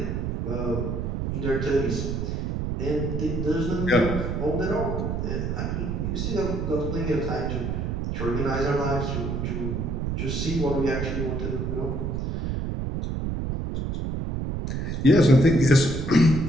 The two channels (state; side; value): noise; right; rumble, 2 dB below the sound